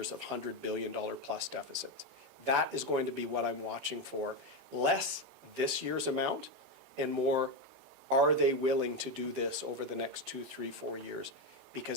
of $100 billion plus deficits. That is going to be what I'm watching for. Less this year's amount and more, are they willing to do this over the next 2, 3, 4 years?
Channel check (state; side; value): normal; both; correlation 0.10